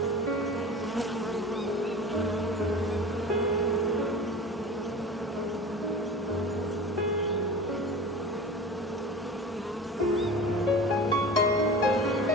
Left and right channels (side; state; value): both; normal; correlation 0.35